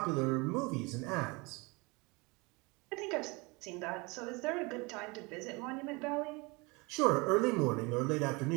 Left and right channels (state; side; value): quieter; left; 26.8 dB